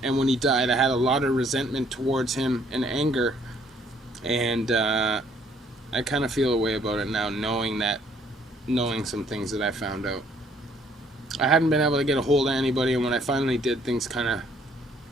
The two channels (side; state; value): both; normal; correlation 0.64